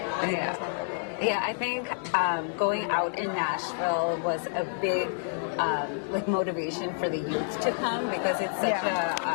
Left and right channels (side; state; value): right; silent; digital silence